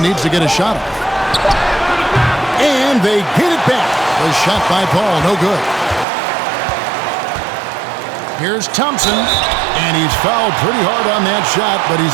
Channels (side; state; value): left; drops out; at 6.1 s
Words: needs to get a shot off. And they get it back. The shot by Paul, no good. Here's Thompson. And he's fouled pretty hard on that shot, but